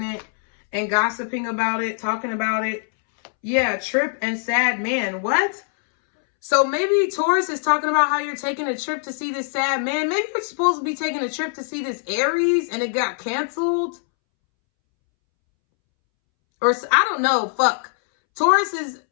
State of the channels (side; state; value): right; silent; 64 dB below the other